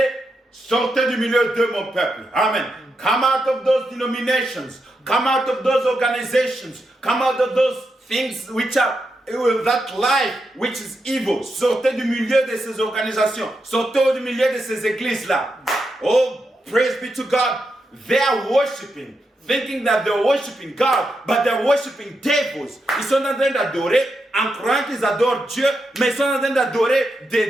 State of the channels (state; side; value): normal; both; correlation 0.85